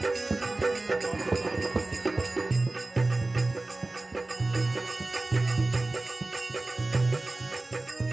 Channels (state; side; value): quieter; left; 3.0 dB